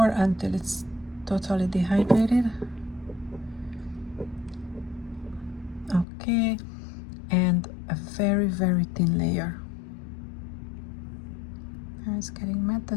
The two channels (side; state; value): right; drops out; at 6.1 s